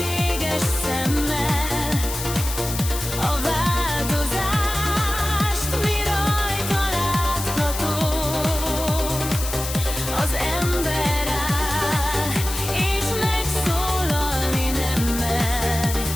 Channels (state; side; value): noise; left; hiss, 7 dB below the sound